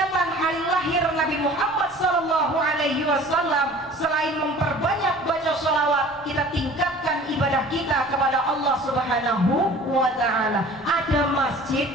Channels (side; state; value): both; normal; correlation 0.46